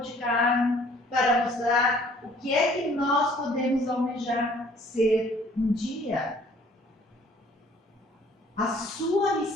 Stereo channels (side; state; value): both; normal; correlation 0.57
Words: carne, para mostrar o que é que nós podemos almejar ser um dia. A sua